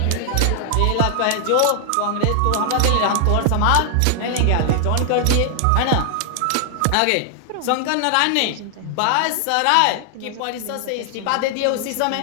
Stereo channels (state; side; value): different; both; correlation 0.00